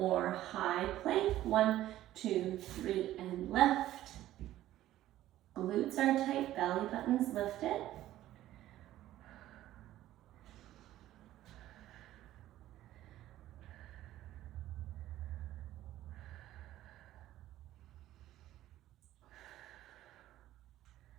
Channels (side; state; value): left; quieter; 14.0 dB